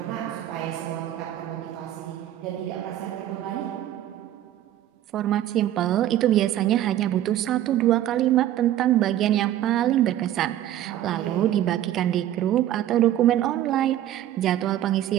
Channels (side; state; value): left; quieter; 12.6 dB